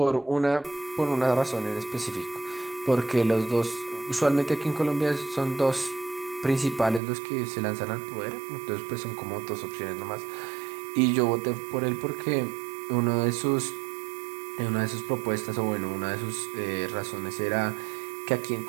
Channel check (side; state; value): left; drops out; at 7.0 s